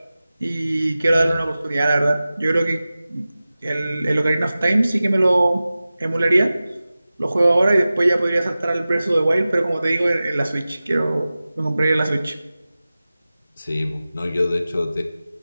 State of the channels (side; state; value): both; inverted; correlation -0.96